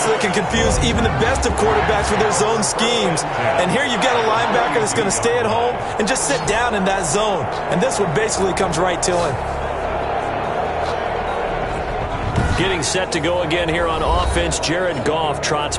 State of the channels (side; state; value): both; identical; correlation 1.00